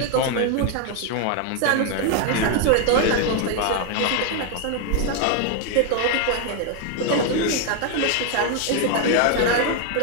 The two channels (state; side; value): different; both; correlation 0.01